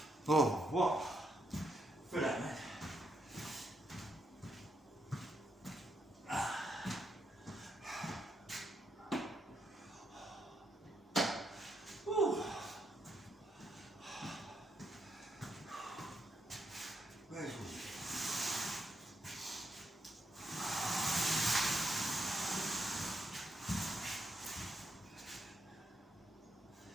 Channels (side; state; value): both; normal; correlation 0.79